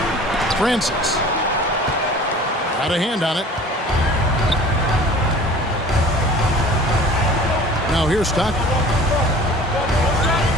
Francis. Got a hand on it. Now here's Stockton.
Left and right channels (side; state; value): both; normal; correlation 0.45